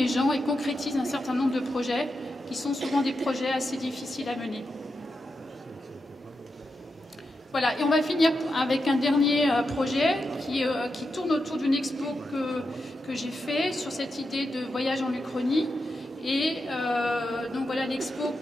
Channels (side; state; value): both; normal; correlation 0.87